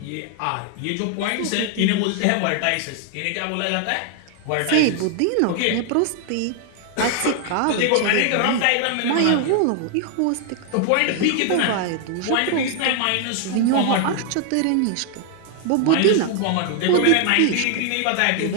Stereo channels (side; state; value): both; different; correlation 0.00